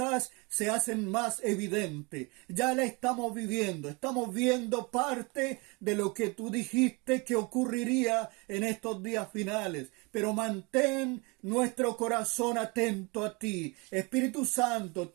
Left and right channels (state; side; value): quieter; left; 28.4 dB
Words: se hacen más evidentes. Ya la estamos viendo parte de lo que tú dijiste que ocurriría en estos días finales. Pero mantén nuestro corazón atento a ti. Espíritu Santo,